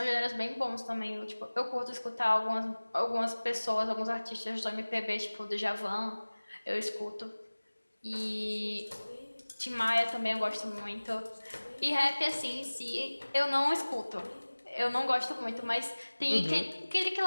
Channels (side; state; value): both; inverted; correlation -1.00